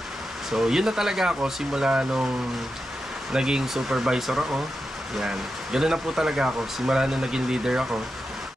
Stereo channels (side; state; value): both; normal; correlation 0.89